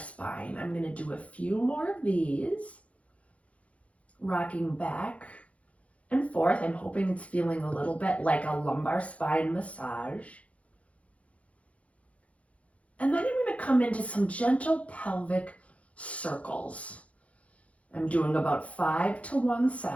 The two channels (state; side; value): late; right; 0.065 ms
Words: I'm going to do a few more of these, rocking back and forth. I'm hoping it's feeling a little bit like a lumbar spine massage. And then I'm going to come into some gentle pelvic circles. I'm doing about 5 to one